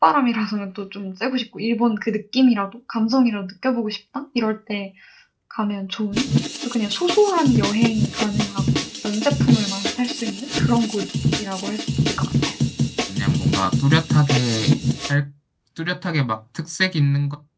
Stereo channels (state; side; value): identical; both; correlation 1.00